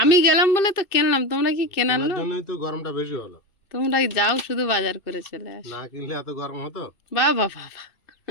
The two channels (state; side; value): late; right; 2.6 ms